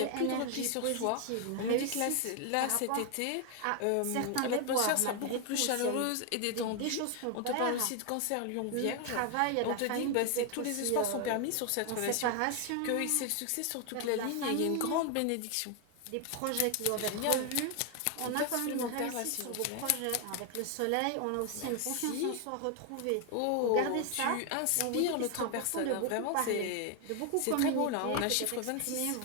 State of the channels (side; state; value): both; different; correlation 0.01